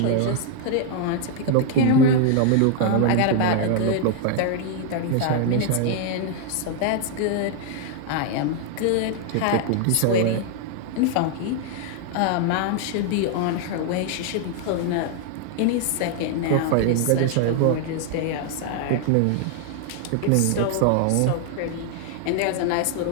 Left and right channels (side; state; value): both; different; correlation 0.00